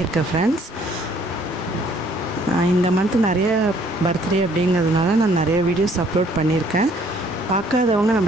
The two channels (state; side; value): normal; both; correlation 0.61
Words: ஃப்ரெண்ட்ஸ். இந்த மந்த் நிறைய பர்த்டே அப்படிங்கிறதுனால நான் நிறைய வீடியோஸ் அப்லோட் பண்ணியிருக்கேன். பார்க்காதவங்க